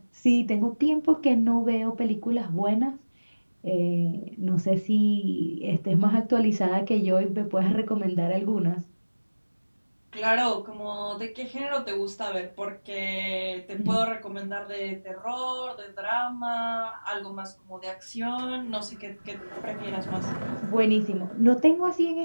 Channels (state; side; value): inverted; both; correlation -1.00